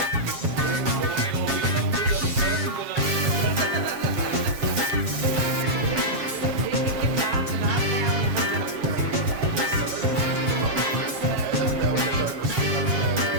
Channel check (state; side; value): late; left; 7.4 ms